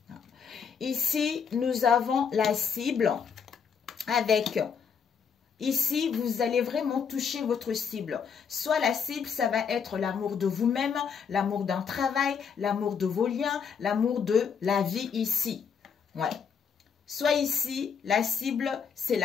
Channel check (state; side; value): quieter; right; 6.6 dB